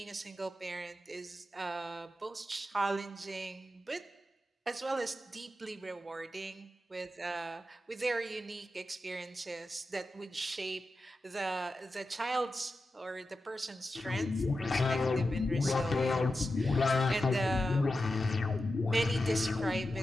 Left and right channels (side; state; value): both; normal; correlation 0.91